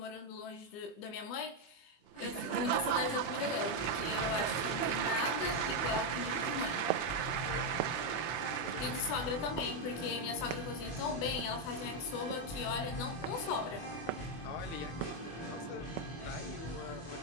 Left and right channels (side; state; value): right; late; 24 ms